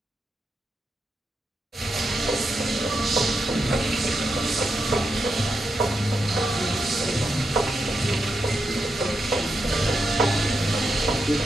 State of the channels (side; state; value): both; normal; correlation 0.86